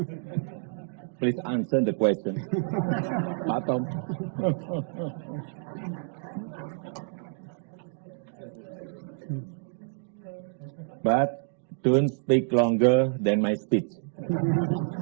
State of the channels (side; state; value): left; silent; digital silence